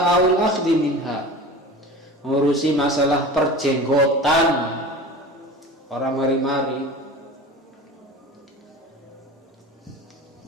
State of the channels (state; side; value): normal; both; correlation 0.35